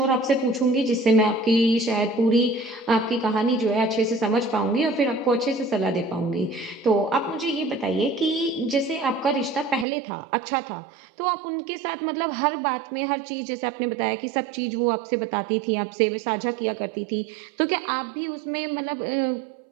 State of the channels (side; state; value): left; drops out; at 9.9 s